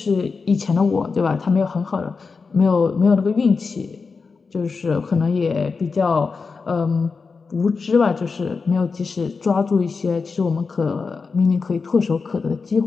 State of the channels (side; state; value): right; quieter; 4.7 dB